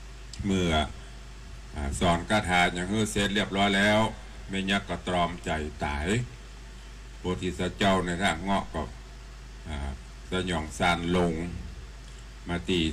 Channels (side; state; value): both; identical; correlation 1.00